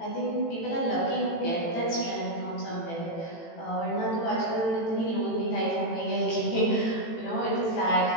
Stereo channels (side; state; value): right; late; 18 ms